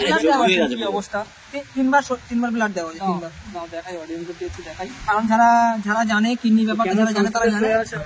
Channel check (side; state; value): both; identical; correlation 1.00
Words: ব্লাড দেওয়া হয়ে হয়েছে। গেছে কি পুরো। অবস্থা? 3বার ব্লাড দেওয়া হয়েছে, 3 বার। দাও দেখাই, অডিয়েন্সকে একটু দেখাই। কারণ যারা জানে কিডনি ব্যাপারটা, যারা জানে তারা জানে। আছে